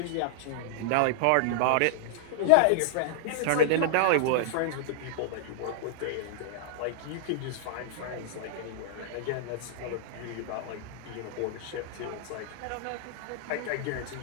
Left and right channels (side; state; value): both; different; correlation -0.01